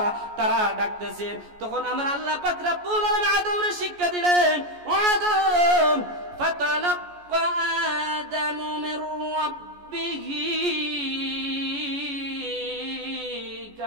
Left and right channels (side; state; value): left; late; 14 ms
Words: তারা ডাকতেছে। তখন আমার আল্লাহ পাক রব্বুল আলামিন আদমরে শিক্ষা দিলেন, ও আদম ফাতালাক্কা আদামু মির রাব্বিহি